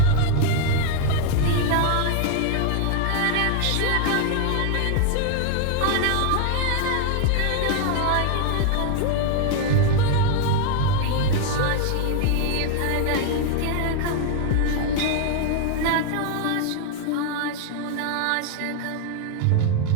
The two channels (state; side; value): different; both; correlation 0.00